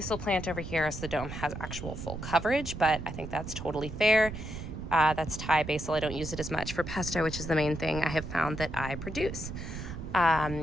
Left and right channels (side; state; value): right; noise; rumble, 8 dB below the sound